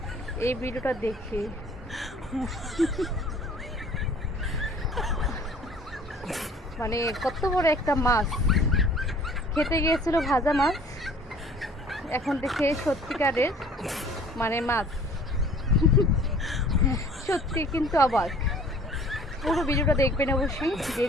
এই ভিডিওটা দেখে। মানে কত বড় একটা মাছ খেতে গিয়েছিল, ভাজা মাছ, এখন দেখে সত্যিকারের মানে মাছ। সত্যি কিন্তু অবাক। পুরো ভিডিওটা দেখবেন অবশ্যই,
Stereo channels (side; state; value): both; normal; correlation 0.51